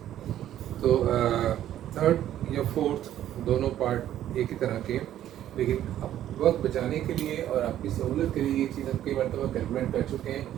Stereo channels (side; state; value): left; quieter; 11.9 dB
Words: तो थर्ड या फोर्थ दोनों पार्ट एक ही तरह के, लेकिन अब वक्त बचाने के लिए और आपकी सहूलत के लिए ये चीज़ हम कई मरतबा कैलकुलेट कर चुके हैं।